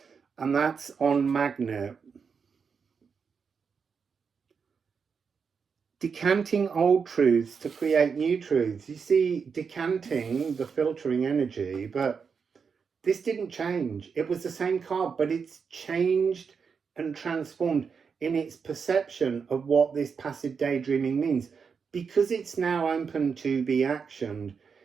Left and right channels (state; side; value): quieter; left; 5.9 dB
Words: And that's on magnet. Decanting old truths to create new truths. You see, decanting, the filtering energy, but this didn't change. It was the same card, but it's changed and transformed in its perception of what this passive daydreaming means. Because it's now open to be actioned,